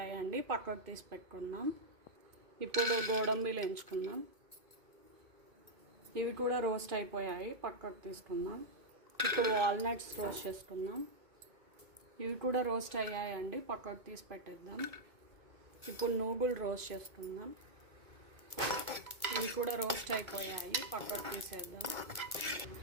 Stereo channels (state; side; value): late; left; 2.2 ms